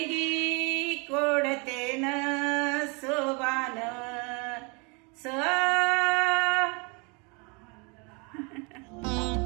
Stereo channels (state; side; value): quieter; left; 31.6 dB